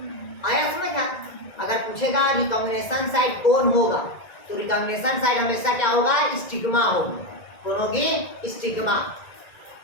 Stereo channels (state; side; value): late; right; 1.9 ms